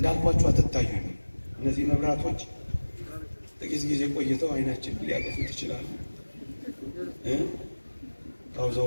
አትታዩኝ። እነዚህ መብራቶች ጥቂት ጊዜ ቆይተው አይናችን ሊያጠፉት ይችላሉ።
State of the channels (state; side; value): inverted; both; correlation -1.00